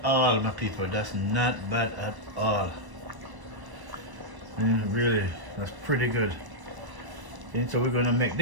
all, my people. That's not bad at all. Really, that's pretty good. And so we're gonna make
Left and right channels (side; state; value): left; late; 1.0 ms